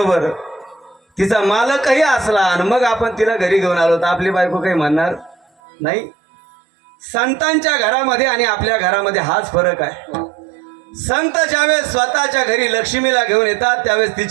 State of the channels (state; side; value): drops out; left; at 5.5 s